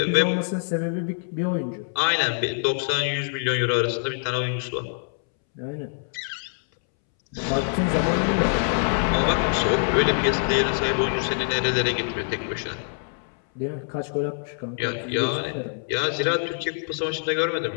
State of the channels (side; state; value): right; silent; 62 dB below the other